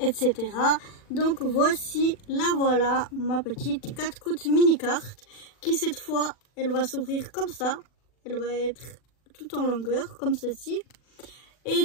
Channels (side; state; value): right; late; 40 ms